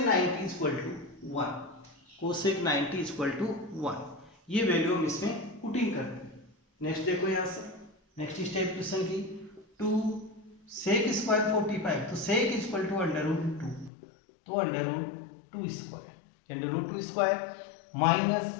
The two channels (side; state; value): right; drops out; at 13.9 s